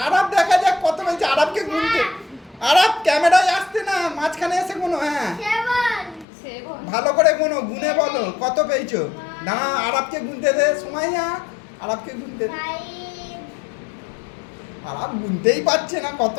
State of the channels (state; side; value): drops out; right; at 6.2 s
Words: আরব দেখা যাক কত পেয়েছে। আরবকে গুনতে, আরব ক্যামেরায় আসতে না, মাঝখানে এসে গুনো। হ্যাঁ 7 ভালো করে গুনো, গুনে বলো কত পেয়েছো। দাঁড়া আরবকে গুনতে দে। সুমাইয়া আরবকে গুনতে দে। 5 আরব গুনতেই পারছে না কত